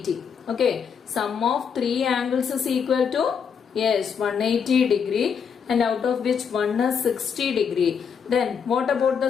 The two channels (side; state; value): right; quieter; 6.8 dB